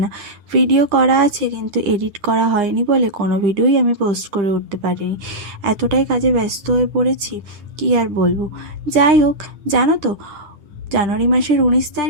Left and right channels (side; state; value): left; late; 9.7 ms